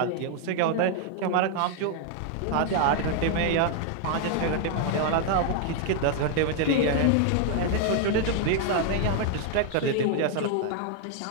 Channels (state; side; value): different; both; correlation 0.00